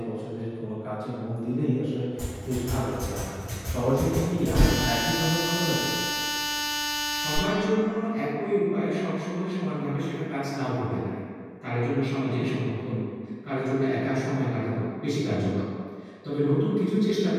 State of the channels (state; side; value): identical; both; correlation 1.00